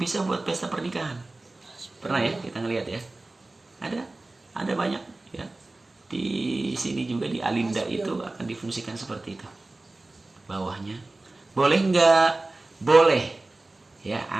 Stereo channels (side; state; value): left; quieter; 3.0 dB